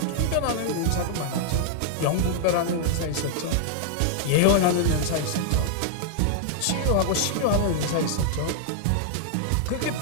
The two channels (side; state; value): both; different; correlation -0.01